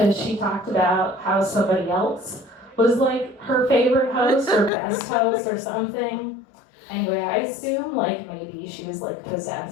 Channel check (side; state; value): right; drops out; at 4.7 s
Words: she talked about how somebody else was like her favorite host or best host or something. Anyway, I assume like maybe she was like